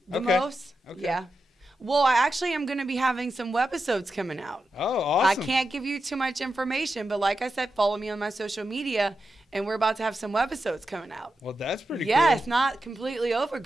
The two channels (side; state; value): both; normal; correlation 0.89